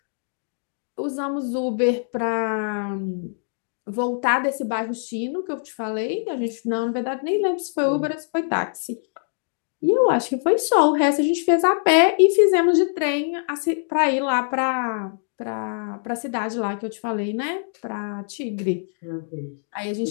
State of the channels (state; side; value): silent; right; digital silence